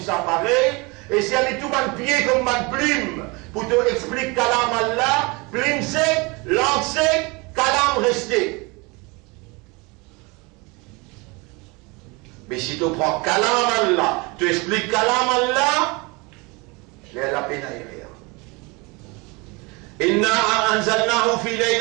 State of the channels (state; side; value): quieter; left; 27.1 dB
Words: apparaît. Et si elle est tout mal pied comme mal plume, pour te expliquer kalam Allah, plume sec, langue sec, kalam resté. Mais si tu prends kalam Allah, tu expliques kalam Allah, il y a la peine à y rire. Inna anzalnahu fi